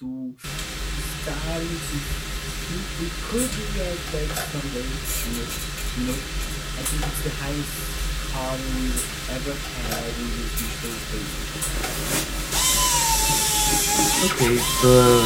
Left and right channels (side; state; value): both; identical; correlation 1.00